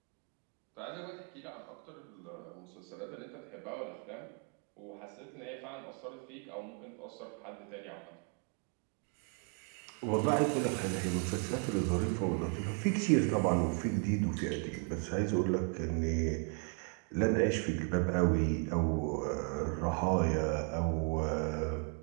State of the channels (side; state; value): left; quieter; 37.7 dB